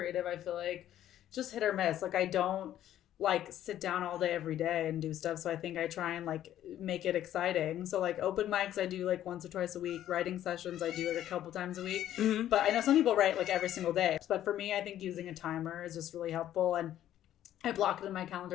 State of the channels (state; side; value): quieter; right; 11.9 dB